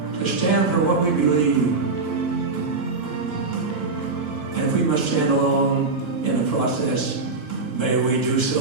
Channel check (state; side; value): quieter; left; 3.9 dB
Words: to stand for what we believe. And if we must stand alone in the process, may we do